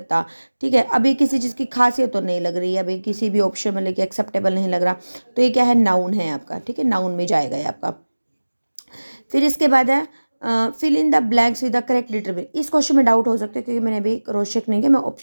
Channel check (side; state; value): both; inverted; correlation -1.00